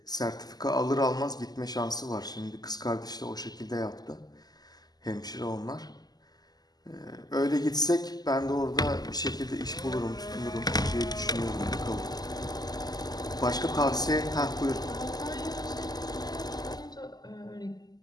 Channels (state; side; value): late; right; 0.20 ms